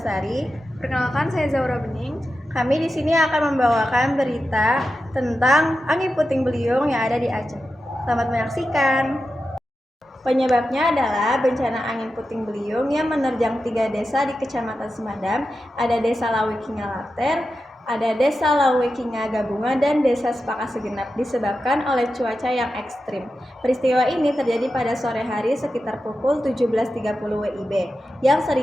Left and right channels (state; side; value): normal; both; correlation 0.91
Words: Perkenalkan, saya Zaura Bening. Kami di sini akan membawakan berita tentang angin puting beliung yang ada di Aceh. Selamat menyaksikan. Penyebabnya adalah bencana angin puting beliung yang menerjang 3 desa di Kecamatan Semadam. Ada Desa Lawekinga Later, ada Desa Lawekinga Gabungan, dan Desa Sepakat Segenap, disebabkan oleh cuaca yang ekstrim. Peristiwa ini terjadi pada sore hari sekitar pukul 17.30 WIB, yang